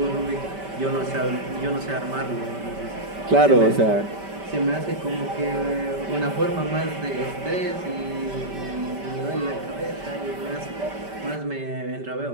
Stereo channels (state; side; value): late; left; 5.1 ms